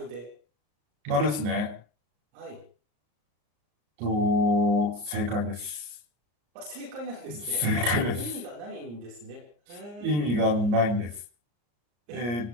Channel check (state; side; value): late; left; 34 ms